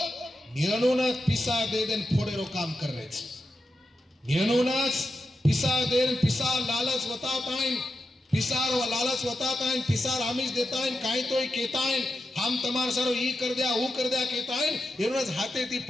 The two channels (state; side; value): normal; both; correlation 0.89